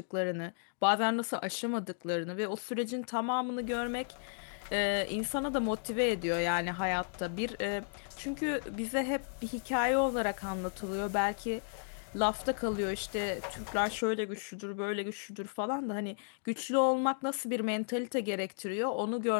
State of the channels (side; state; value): right; silent; digital silence